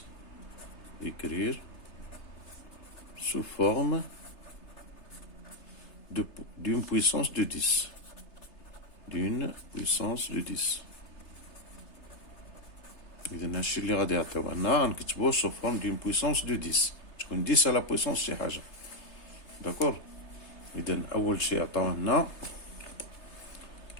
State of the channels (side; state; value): right; late; 3.3 ms